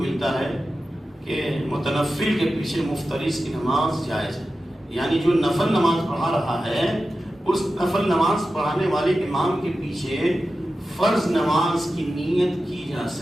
ملتا ہے کہ متنفل کے پیچھے مفترض کی نماز جائز ہے. یعنی جو نفل نماز پڑھا رہا ہے اس نفل نماز پڑھانے والے امام کے پیچھے فرض نماز کی نیت کی جا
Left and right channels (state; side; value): normal; both; correlation 0.93